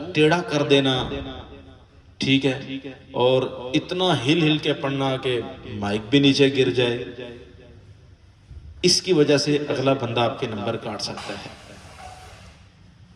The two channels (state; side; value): identical; both; correlation 1.00